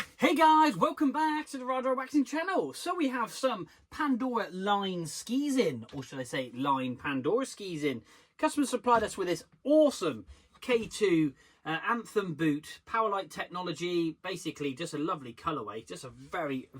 Hey guys, welcome back to the Radar Waxing channel. So we have some Pandora line skis in, or should I say line Pandora skis in. Customer supplied us with this awesome K2 Anthem boot, Powerlight technology, basically just a lovely colourway, just a very,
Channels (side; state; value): both; identical; correlation 1.00